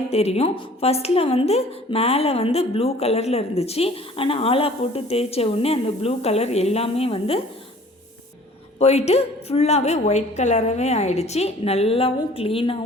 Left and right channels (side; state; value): both; normal; correlation 0.51